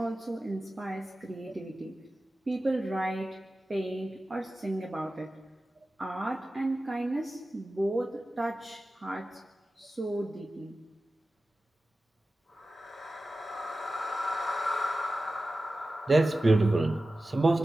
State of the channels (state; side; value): normal; both; correlation 0.95